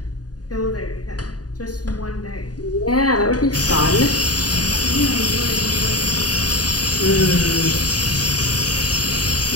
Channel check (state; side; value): late; right; 0.68 ms